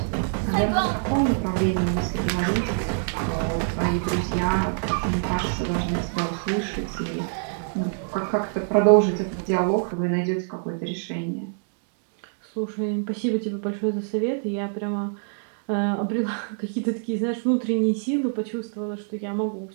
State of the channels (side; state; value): left; silent; digital silence